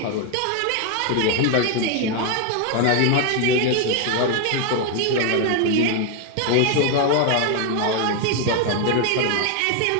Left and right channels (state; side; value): different; both; correlation 0.01